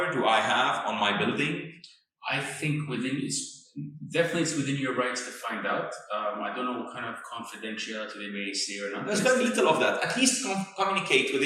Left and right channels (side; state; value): both; identical; correlation 1.00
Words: do I have on my building? I think it's within your rights to find out. I don't know what kind of confidentiality they may say or not. There's very little of that. At least communicate with